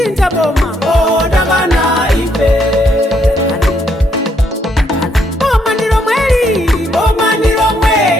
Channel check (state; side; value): normal; both; correlation 0.73